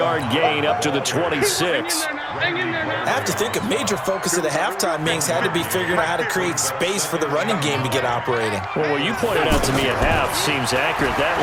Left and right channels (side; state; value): both; identical; correlation 1.00